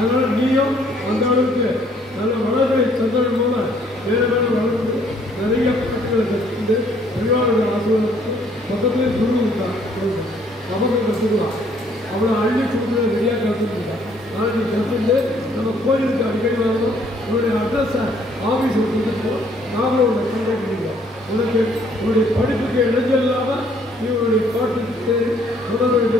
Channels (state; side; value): normal; both; correlation 0.64